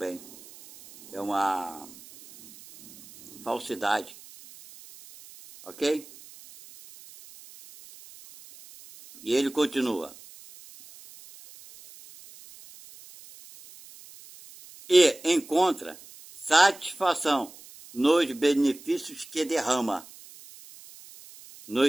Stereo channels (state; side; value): noise; right; hiss, 20 dB below the sound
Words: É uma falsidade. Ok? E ele continua: e encontra satisfação nos benefícios que derrama,